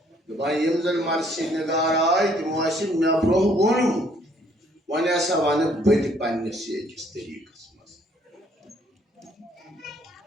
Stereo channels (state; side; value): normal; both; correlation 0.64